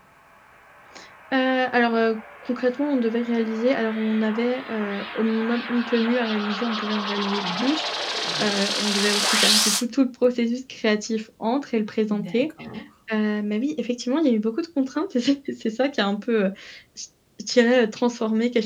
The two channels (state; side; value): identical; both; correlation 1.00